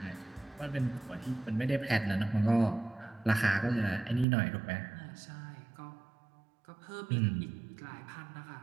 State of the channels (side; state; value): left; drops out; at 4.2 s